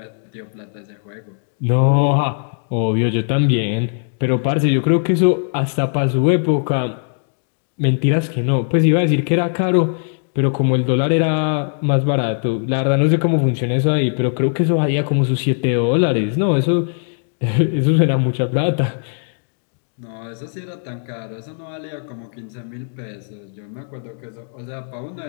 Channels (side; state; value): right; silent; digital silence